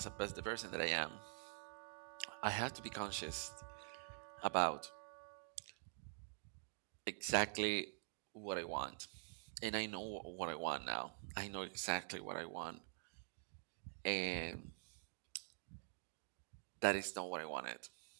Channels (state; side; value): silent; left; digital silence